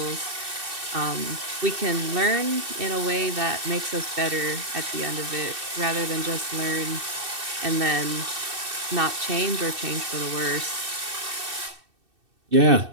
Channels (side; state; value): left; late; 2.6 ms